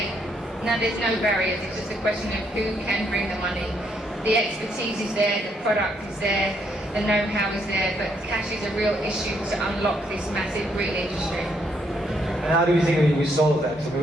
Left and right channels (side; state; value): both; normal; correlation 0.73